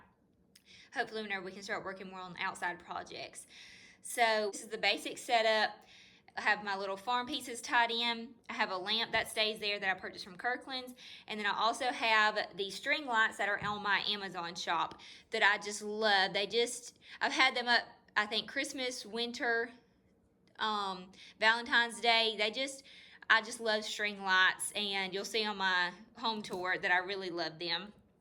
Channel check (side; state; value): both; identical; correlation 1.00